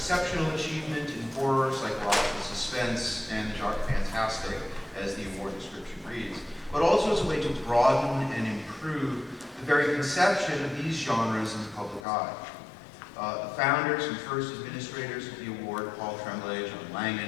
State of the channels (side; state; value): right; drops out; at 12.0 s